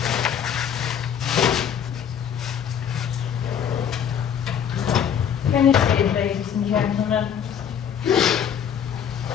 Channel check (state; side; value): quieter; right; 8.4 dB